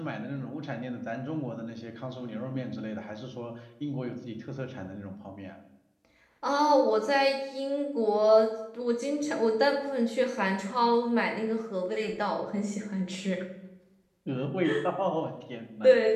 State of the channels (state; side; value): identical; both; correlation 1.00